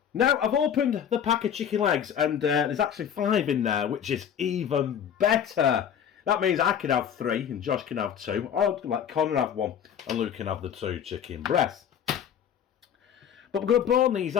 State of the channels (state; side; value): quieter; right; 8.8 dB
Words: Now, I've opened the pack of chicken legs, and there's actually 5 in there, which is even better. That means I can have 3, and Josh can have 2, or let Connor have 1, and Luke can have the 2 chicken breasts. But we're going to bone these